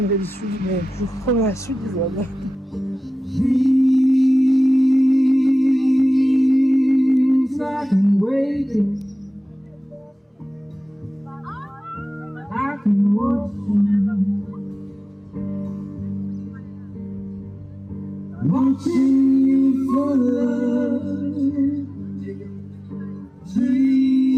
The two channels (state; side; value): normal; both; correlation 0.96